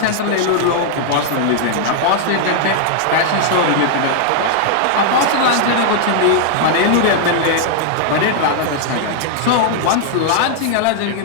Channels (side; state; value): both; different; correlation -0.01